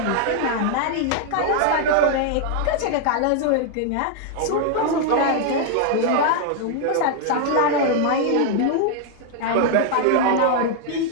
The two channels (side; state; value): both; different; correlation 0.00